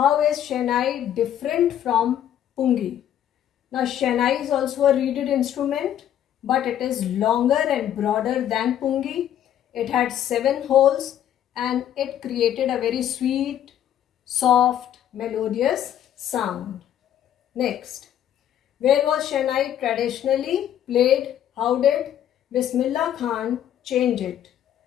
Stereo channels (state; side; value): quieter; right; 10.7 dB